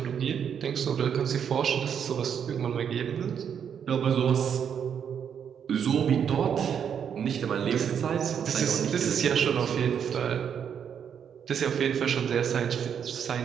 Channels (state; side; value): quieter; left; 8.0 dB